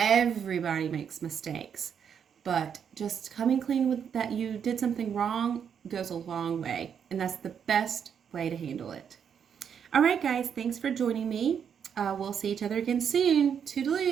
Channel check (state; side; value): quieter; left; 7.7 dB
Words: makes mistakes, but just coming clean with that you did something wrong goes a long way, and that's the best way to handle it. All right, guys, thanks for joining me. We'll see each other again soon.